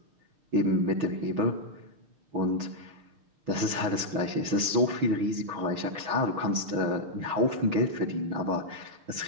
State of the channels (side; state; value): left; late; 6.2 ms